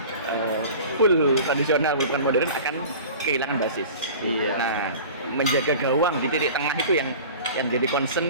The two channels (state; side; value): inverted; both; correlation -0.39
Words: Full tradisional bukan modern akan kehilangan basis. Iya. Nah, menjaga gawang di titik tengah itu yang jadi